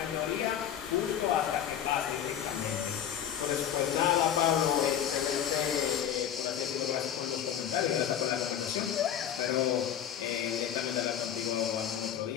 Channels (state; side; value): quieter; right; 9.8 dB